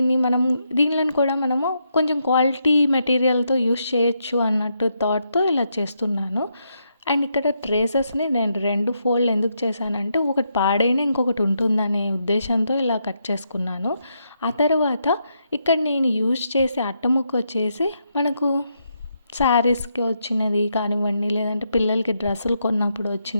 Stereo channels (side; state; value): both; inverted; correlation -0.80